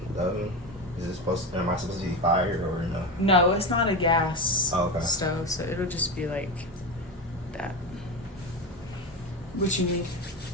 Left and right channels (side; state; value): both; normal; correlation 0.19